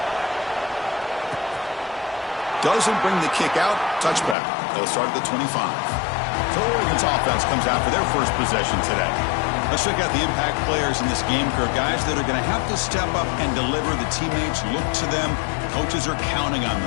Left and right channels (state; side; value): drops out; right; at 4.4 s